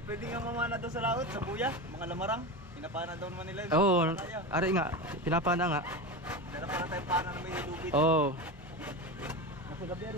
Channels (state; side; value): noise; right; hum, 28 dB below the sound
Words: pwede nga mamana daw sa laot, sa buya, mga lamarang. Pinapana daw naman nila. Oo, ari nga, pinapana nga. Dala para tayo pana na may lubid. Oo, Nasa gabi